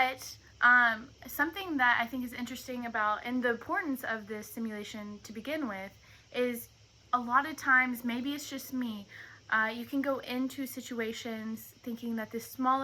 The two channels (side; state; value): both; identical; correlation 1.00